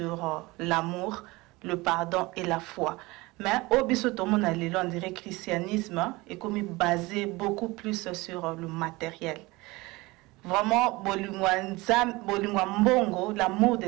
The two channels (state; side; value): quieter; left; 22.1 dB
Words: l'amour, le pardon et la foi. Mais au bisotomo on dirait que le christianisme est comme basé beaucoup plus sur le matériel. Vraiment, bolingwa mbongo, l'amour de